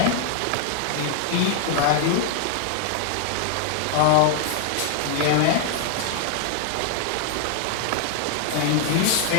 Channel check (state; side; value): different; both; correlation 0.00